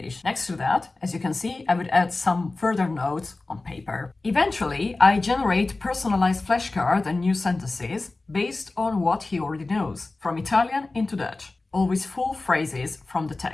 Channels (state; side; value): quieter; right; 3.3 dB